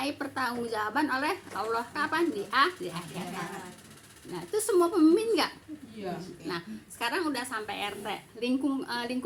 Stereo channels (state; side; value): identical; both; correlation 1.00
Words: pertanggungjawaban oleh Allah kapan? Di akhirat. Nah, itu semua pemimpin enggak? Nah, sekarang udah sampai RT,